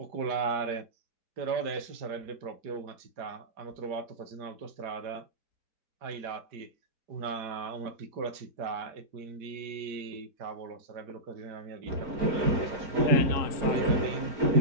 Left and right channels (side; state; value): left; late; 4.9 ms